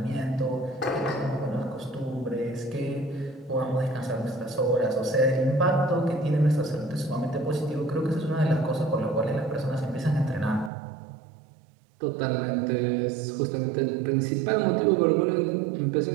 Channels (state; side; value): drops out; left; at 10.7 s